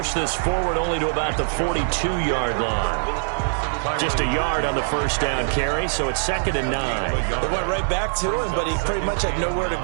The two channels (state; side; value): silent; left; digital silence